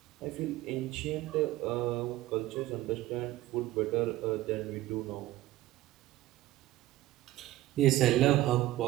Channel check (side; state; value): left; quieter; 16.0 dB